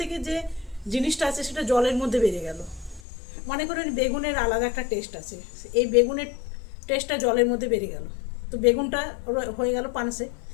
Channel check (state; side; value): drops out; right; at 3.0 s